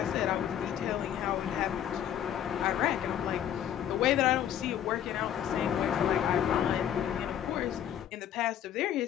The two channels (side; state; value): right; quieter; 10.2 dB